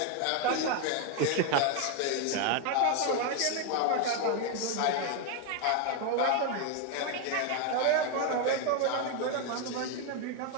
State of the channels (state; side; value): different; both; correlation 0.01